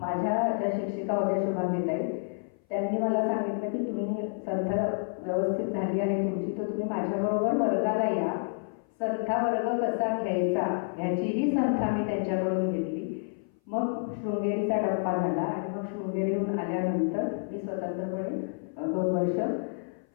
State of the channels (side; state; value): right; silent; 56 dB below the other